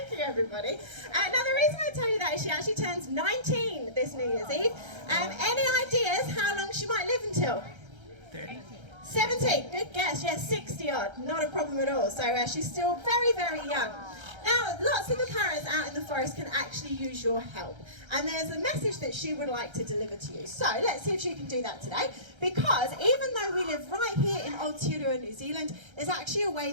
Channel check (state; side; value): late; left; 1.3 ms